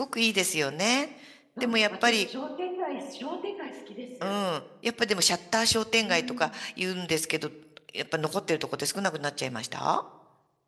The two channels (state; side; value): identical; both; correlation 1.00